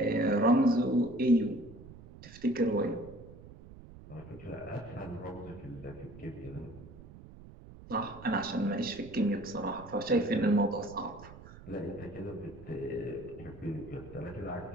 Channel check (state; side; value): noise; right; rumble, 17 dB below the sound